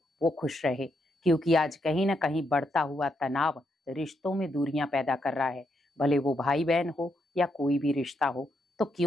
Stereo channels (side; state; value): both; normal; correlation 0.80